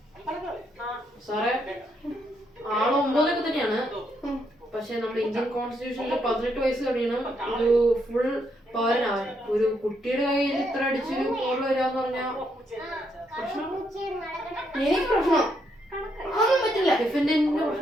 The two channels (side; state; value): both; normal; correlation 0.76